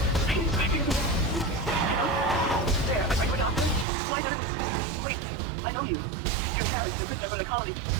Please, I hear me. There, are you a doctor? Why not? Wait, I know you. You're Harry, you're a prisoner from the colony.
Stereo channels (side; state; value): left; drops out; at 3.9 s